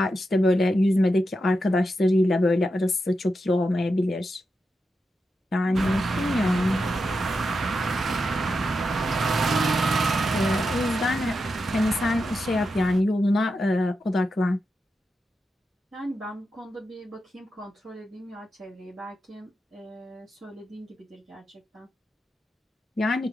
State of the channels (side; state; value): both; normal; correlation 0.88